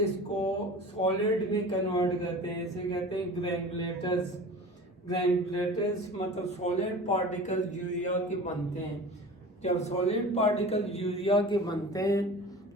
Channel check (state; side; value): normal; both; correlation 0.37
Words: इसको सॉलिड में कन्वर्ट करते हैं। इसे कहते हैं ग्रैनुलेटर्स। ग्रैनुलेटर्स मतलब सॉलिड पार्टिकल यूरिया के बनते हैं। जब सॉलिड पार्टिकल यूरिया के बनते हैं